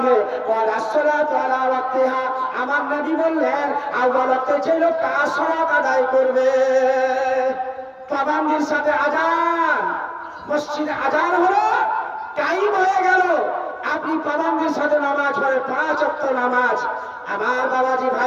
ওয়া রাসূলুহু আলা ওয়াক্তিহা। আমার নবী বললেন, আউয়াল ওয়াক্তে যে লোকটা সালাত আদায় করবে, পাবন্দির সাথে আযান, মসজিদে আযান হলো, টাইম হয়ে গেল, আপনি পাবন্দির সাথে নামাজ পড়ে 5 ওয়াক্ত নামাজ। আমার বাবাজি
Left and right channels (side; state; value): both; identical; correlation 1.00